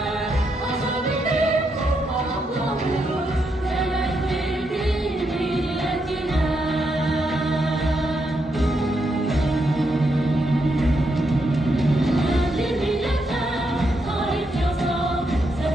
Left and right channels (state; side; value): normal; both; correlation 0.81